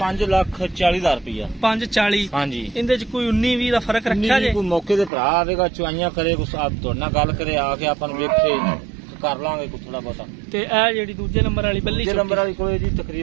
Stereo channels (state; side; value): drops out; left; at 5.1 s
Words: 5,40,000 ਰੁਪਇਆ। 540। ਹਾਂਜੀ ਇਹਦੇ ਚ ਕੋਈ 19-20 ਦਾ ਫਰਕ ਰੱਖਿਆ ਜੇ? ਕੋਈ ਮੌਕੇ ਤੇ ਭਰਾ ਆਵੇਗਾ ਚੁਆਈਆਂ ਕਰੇ ਕੁਛ ਆਪ ਤੁਹਾਡੇ ਨਾਲ ਗੱਲ ਕਰੇ ਆ ਕੇ ਆਪਾਂ ਨੂੰ ਵੇਖੇ ਕਰ ਲਾਂਗੇ ਕੋਈ ਥੋੜਾ ਬਹੁਤਾ। ਤੇ ਇਹ ਜਿਹੜੀ ਦੂਜੇ ਨੰਬਰ ਵਾਲੀ ਬੱਲੀ ਦੂਜੇ ਨੰਬਰ ਵਾਲੀ ਕੋਲੇ ਜੀ